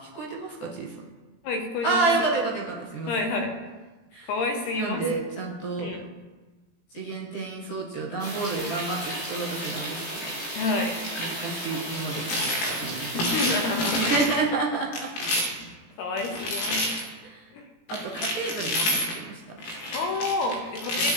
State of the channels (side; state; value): right; late; 18 ms